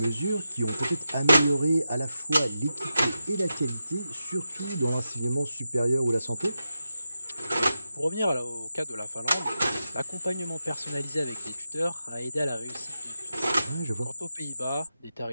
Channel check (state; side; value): inverted; both; correlation -0.90